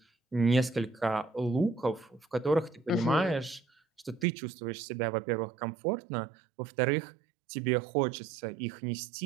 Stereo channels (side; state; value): left; drops out; at 4.2 s